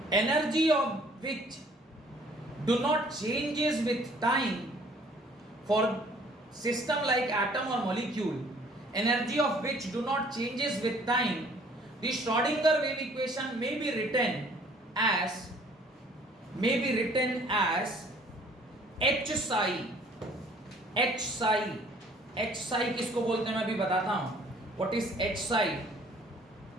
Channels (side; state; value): both; normal; correlation 0.57